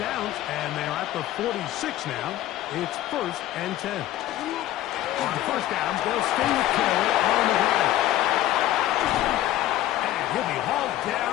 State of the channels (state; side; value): quieter; right; 14.0 dB